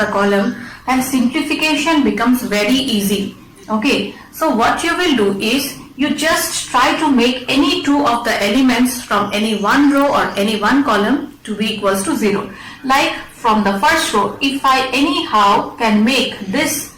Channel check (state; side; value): identical; both; correlation 1.00